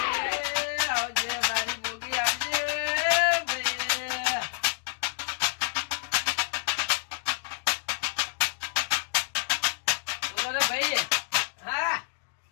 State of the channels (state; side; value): silent; right; digital silence